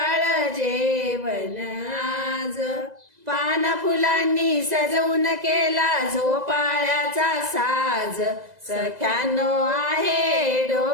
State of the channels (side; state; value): left; late; 2.0 ms